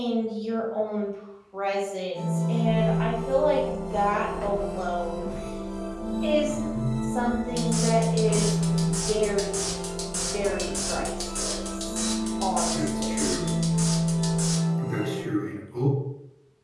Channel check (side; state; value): both; identical; correlation 1.00